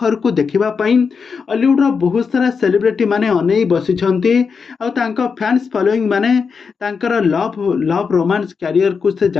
को देखिबा पई हॉलीवुड रो बहुत सारा सेलिब्रिटी माने अनेई बसिछंती। आ तांका फैंस फॉलोइंग माने तांकर लव रोमांस कैरियर को से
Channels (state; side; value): quieter; right; 5.5 dB